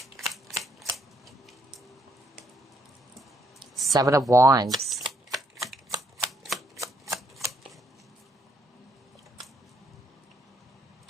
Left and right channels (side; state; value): both; normal; correlation 0.71